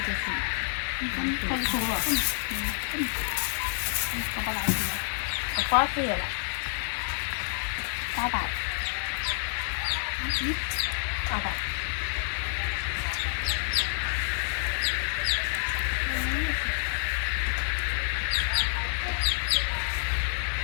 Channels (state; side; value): silent; right; digital silence